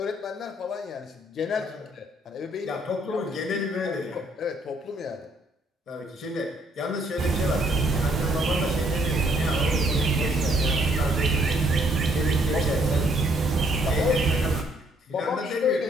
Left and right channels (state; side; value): normal; both; correlation 0.67